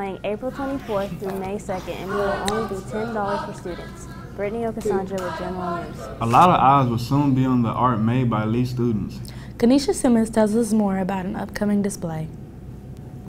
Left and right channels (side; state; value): both; identical; correlation 1.00